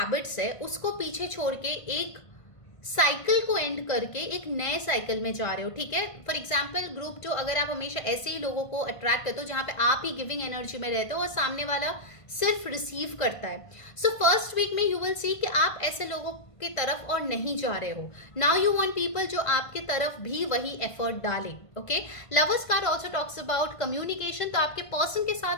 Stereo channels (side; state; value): right; late; 1.5 ms